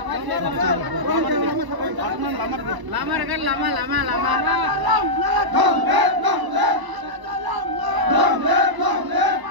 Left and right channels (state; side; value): late; left; 1.0 ms